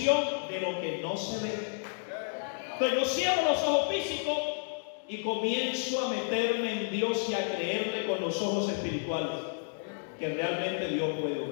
de lo que no se ve. Entonces yo cierro los ojos físicos y comienzo a meterme en Dios y a creerle con los ojos espirituales que realmente Dios puede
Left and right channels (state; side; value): silent; right; digital silence